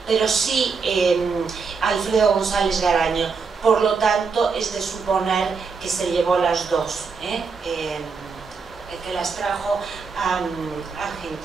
pero sí Alfredo González Garaño. Por lo tanto, es de suponer que se llevó las dos, que las trajo a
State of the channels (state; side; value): quieter; left; 5.1 dB